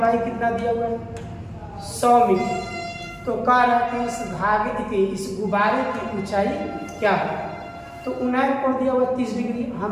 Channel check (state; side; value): identical; both; correlation 1.00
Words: कितना दिया हुआ है 100 मीटर। तो कह रहा है कि इस धागे की, इस गुब्बारे की ऊंचाई क्या है। तो उन्नयन कोण दिया हुआ 30 डिग्री,